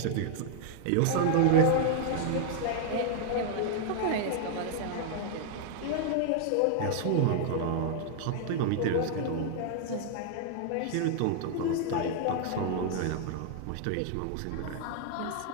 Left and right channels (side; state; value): both; different; correlation 0.00